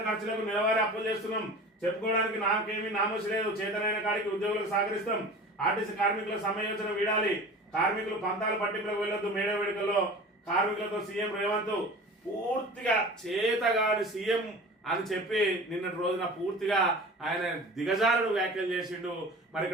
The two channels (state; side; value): normal; both; correlation 0.38